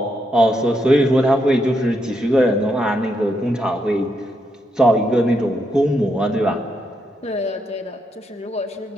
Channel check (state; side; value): normal; both; correlation 0.80